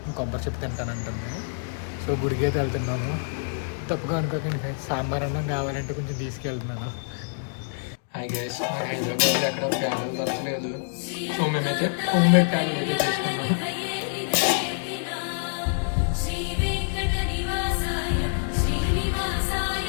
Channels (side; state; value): right; silent; digital silence